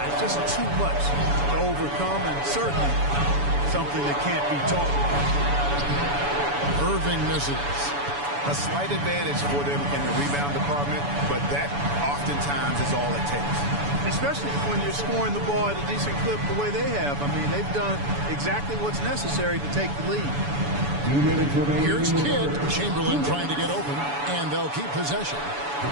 Just too much to overcome, and certainly something that can't be taught. Irving misses. A slight advantage for them in the rebound department, but that oftentimes is all it takes. Especially when you're scoring the ball at a decent clip the way they have. They've done exactly what's necessary to take the lead. Here's Kidd. Chamberlain trying to get open, and they'll keep possession.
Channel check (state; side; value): late; left; 7.0 ms